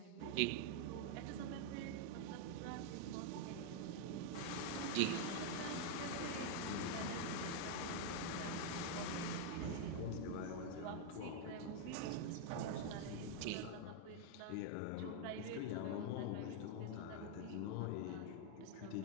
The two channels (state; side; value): different; both; correlation 0.00